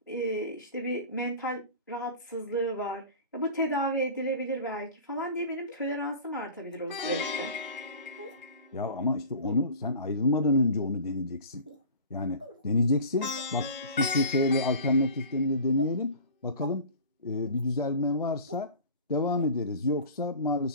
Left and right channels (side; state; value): both; inverted; correlation -0.39